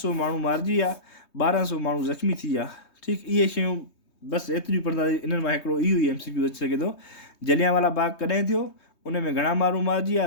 माण्हू मारिजी विया, 1200 माण्हू ज़ख़्मी थी विया। ठीकु, इहे शयूं बसि एतिरियूं पढ़ंदा, इन्हनि मां हिकिड़ो इहो ई MCQ अची सघे थो। जलियांवाला बाग कॾहिं थियो, उन में घणा माण्हू मारिजी विया,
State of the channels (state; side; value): late; right; 3.2 ms